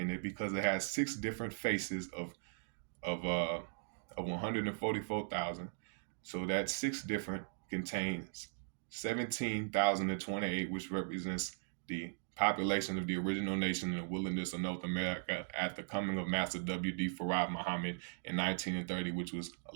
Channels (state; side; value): silent; left; digital silence